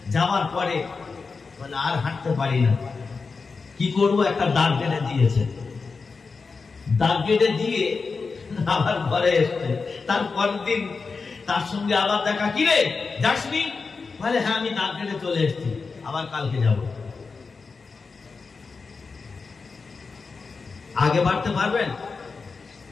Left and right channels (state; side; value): quieter; right; 4.6 dB